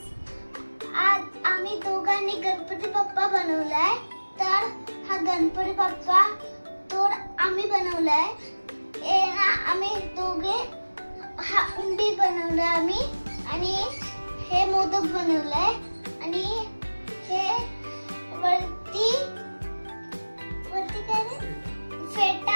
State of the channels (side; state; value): both; inverted; correlation -1.00